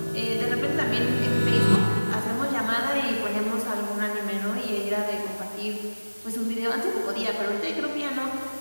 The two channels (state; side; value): inverted; both; correlation -1.00